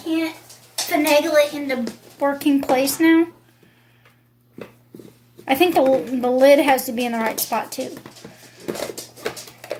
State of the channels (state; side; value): identical; both; correlation 1.00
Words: can't finagle it into working place now. I think the lid has to be in the right spot too.